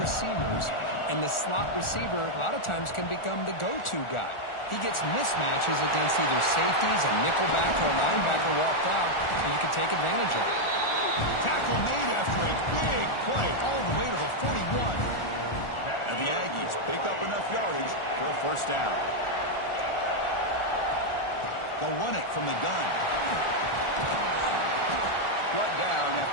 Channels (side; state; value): right; late; 1.4 ms